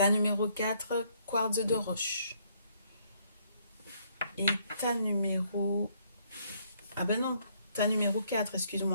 numéro 4, quartz de roche. Et tas numéro... Ah ben non, tas numéro 4,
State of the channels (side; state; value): both; inverted; correlation -0.69